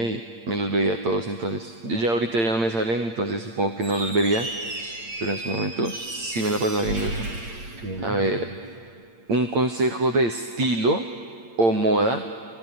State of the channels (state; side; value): late; left; 8.8 ms